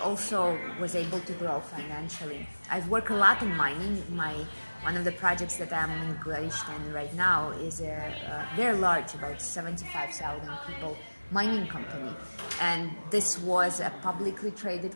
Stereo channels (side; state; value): both; inverted; correlation -1.00